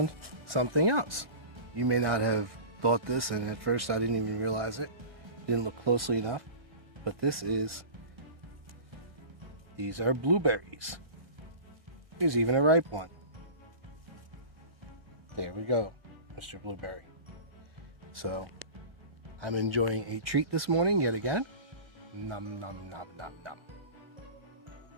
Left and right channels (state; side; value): late; left; 1.8 ms